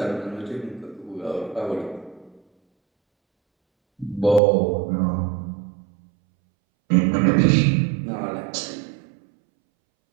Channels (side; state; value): left; drops out; at 4.4 s